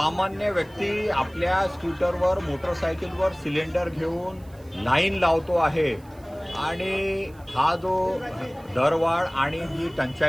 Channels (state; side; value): noise; right; hiss, 29 dB below the sound